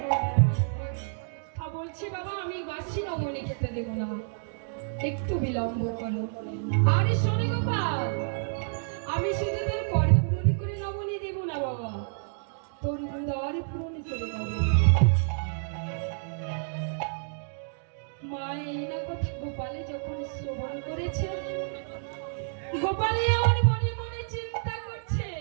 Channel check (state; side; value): silent; left; digital silence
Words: বলছি বাবা, আমি বাসি নবনী খেতে দেব না, একটু বিলম্ব করো। আরে শোনে গোপাল, আমি শুধু তোর কর পূরণ করে নবনী দেব না বাবা, তোর উদার পূরণ করে দেব। মা এই না কথা গোপালে যখন শ্রবণ করেছে, গোপালে আমার মনে মনে চিন্তা করছে,